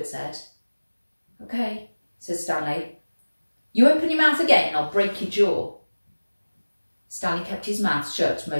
said. "Okay," said Stanley. "You open your mouth again and I'll break your jaw." Stanley kept his mouth shut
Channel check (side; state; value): both; inverted; correlation -1.00